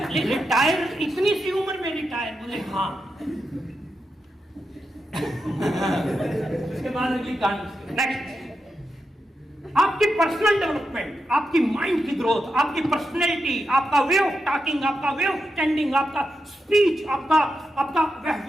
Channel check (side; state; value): both; normal; correlation 0.87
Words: रिटायर इतनी सी उम्र में रिटायर? बोले हाँ। उसके बाद अगली कहानी। नेक्स्ट, आपकी पर्सनल डेवलपमेंट, आपकी माइंड की ग्रोथ, आपकी पर्सनैलिटी, आपका वे ऑफ टॉकिंग, आपका वे ऑफ स्टैंडिंग, आपका स्पीच, आपका